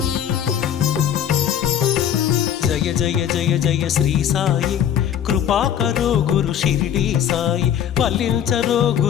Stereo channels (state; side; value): quieter; right; 9.5 dB